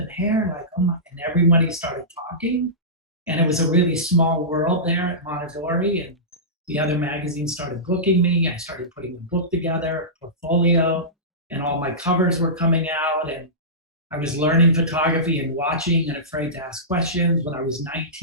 hair." Like, oh my, and everybody started talking. And it was a really small world there at Mondadori. And the other magazines started booking me. I started putting a book together, portfolio, and all my covers were coming out. And I was learning photography and watching and afraid to ask questions. When I was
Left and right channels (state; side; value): normal; both; correlation -0.19